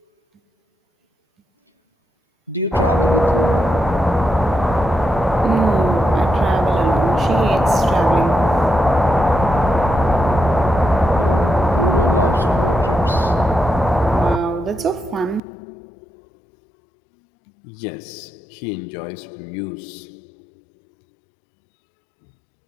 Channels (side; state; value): right; drops out; at 15.4 s